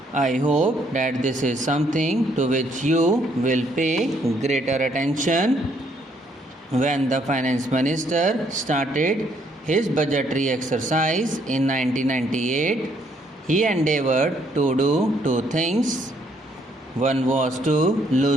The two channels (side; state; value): both; normal; correlation 0.69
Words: I hope that this is something to which you will pay greater attention. When the finance minister started his budgetary exercise in 1998, he endeavored to do two things. One was to